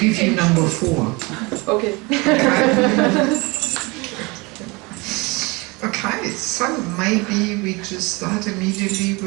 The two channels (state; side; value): quieter; left; 26.0 dB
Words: you number 4. Okay. Okay, so maybe we just start immediately